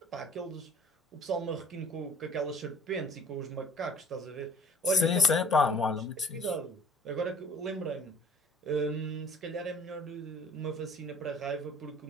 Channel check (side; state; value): both; normal; correlation 0.50